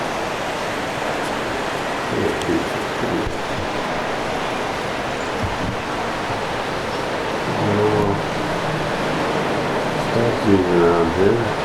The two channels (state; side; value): identical; both; correlation 1.00